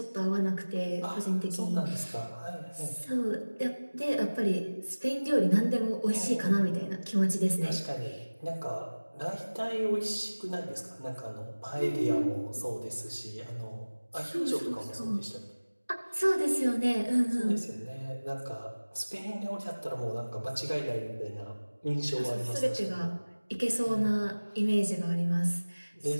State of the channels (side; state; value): both; inverted; correlation -1.00